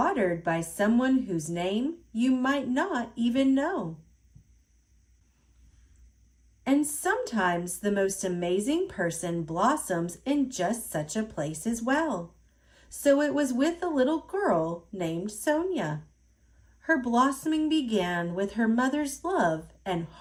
by someone whose name you might not even know. And sometimes the most amazing person blossoms in just such a place as well. So it was with a little girl named Sonia. Her blossoming began with her mother's love and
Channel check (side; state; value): both; identical; correlation 1.00